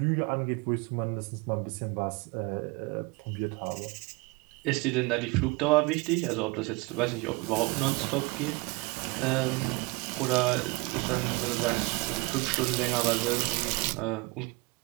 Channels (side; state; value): left; quieter; 26.7 dB